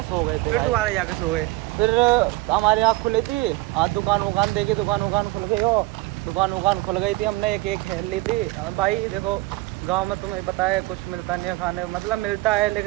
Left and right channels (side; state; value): left; quieter; 20.4 dB